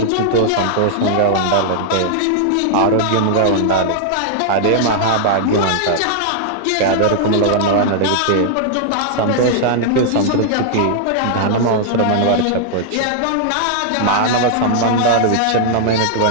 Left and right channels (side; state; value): both; different; correlation -0.01